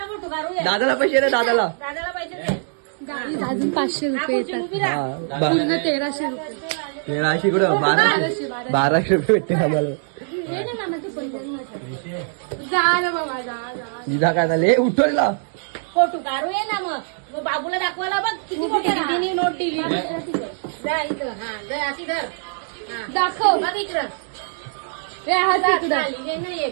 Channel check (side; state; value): left; silent; digital silence